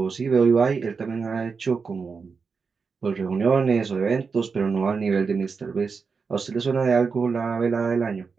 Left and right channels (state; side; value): quieter; left; 5.2 dB